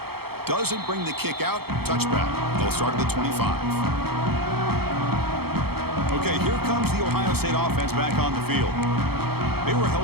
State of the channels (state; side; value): late; left; 0.96 ms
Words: Doesn't bring the kick out. Touchback. They'll start at the 25. Okay, here comes the Ohio State offense back on the field. They were